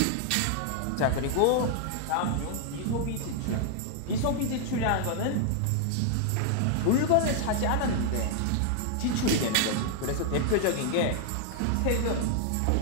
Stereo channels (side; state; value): both; different; correlation 0.00